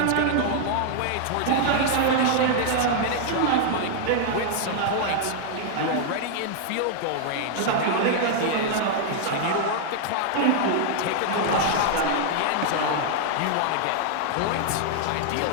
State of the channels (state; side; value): different; both; correlation 0.00